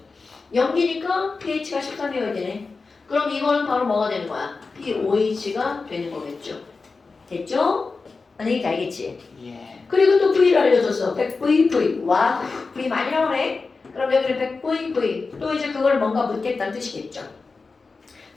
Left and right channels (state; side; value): quieter; right; 4.2 dB